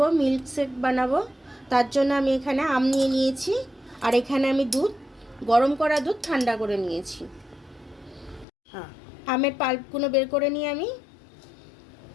মিল্ক শেক বানাবো। তার জন্য আমি এখানে আম নিয়ে নিয়েছি, আর এখানে আমি দুধ, গরম করা দুধ ঠান্ডা করে নিয়েছি। আমের পাল্পগুলো বের করে নিয়ে আমি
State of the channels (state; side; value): drops out; right; at 8.5 s